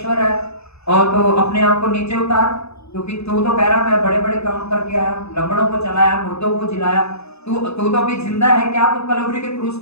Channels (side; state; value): right; late; 0.79 ms